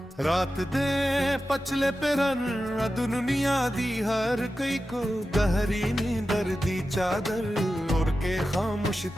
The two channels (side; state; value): both; normal; correlation 0.92